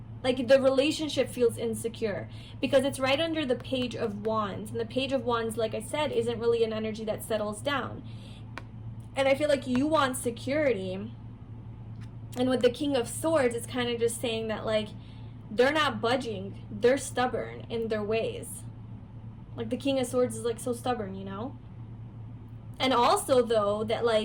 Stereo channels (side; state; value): both; identical; correlation 1.00